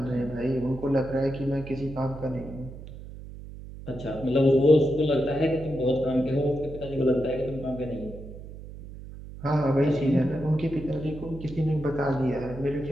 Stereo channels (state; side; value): noise; right; hum, 13 dB below the sound